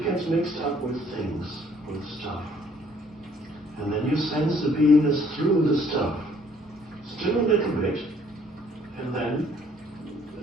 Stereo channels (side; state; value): both; normal; correlation 0.61